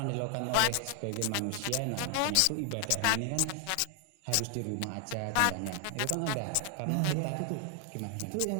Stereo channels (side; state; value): both; different; correlation 0.00